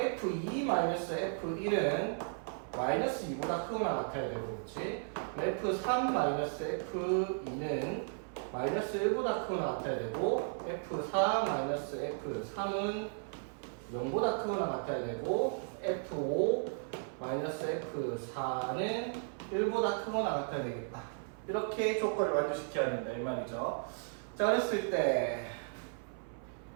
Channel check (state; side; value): silent; left; 54 dB below the other